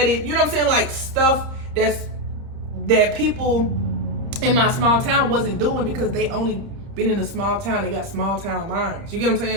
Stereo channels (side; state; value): left; late; 30 ms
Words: You know what I'm saying? Like, stuff that people in my small town wasn't doing, because they only been in a small town. They got small town minds. You get what I'm